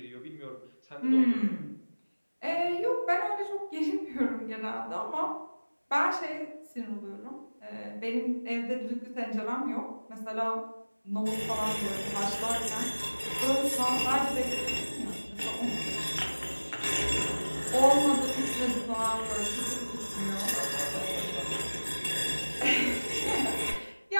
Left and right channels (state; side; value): inverted; both; correlation -1.00